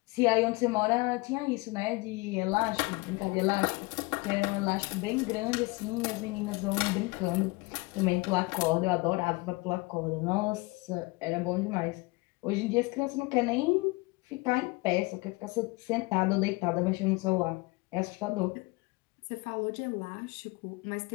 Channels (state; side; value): quieter; right; 24.8 dB